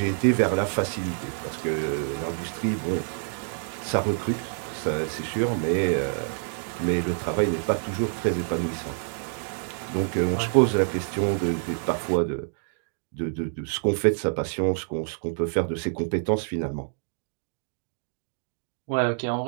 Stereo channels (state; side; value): silent; left; digital silence